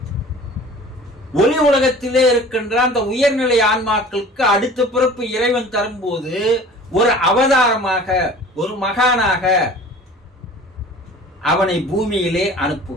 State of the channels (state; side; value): normal; both; correlation 0.44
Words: ஒளி உலகத்திலே இருக்கின்ற அந்த உயர்நிலை ஆன்மாக்களுக்கு அடுத்த பிறப்பு இறைவன் தரும்போது ஒரு அவதாரமாக, ஒரு மகானாக அவனை பூமியிலே